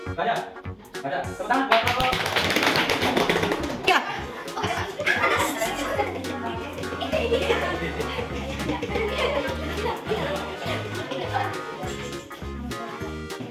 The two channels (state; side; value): identical; both; correlation 1.00